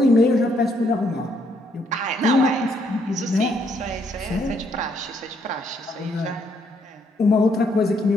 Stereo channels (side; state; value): both; normal; correlation 0.72